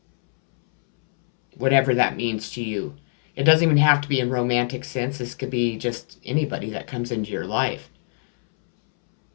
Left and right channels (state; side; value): silent; right; 63 dB below the other